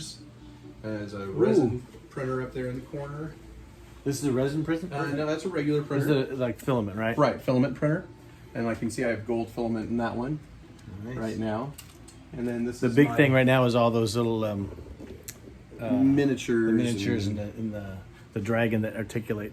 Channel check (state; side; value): identical; both; correlation 1.00